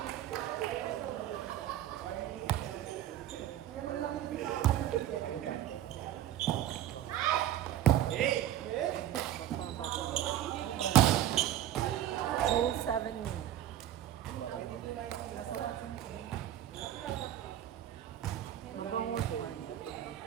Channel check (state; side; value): quieter; left; 12.1 dB